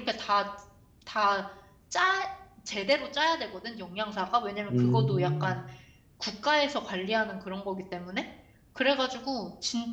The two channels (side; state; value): both; identical; correlation 1.00